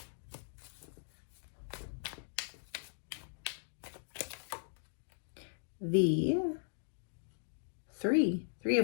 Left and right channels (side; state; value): right; silent; digital silence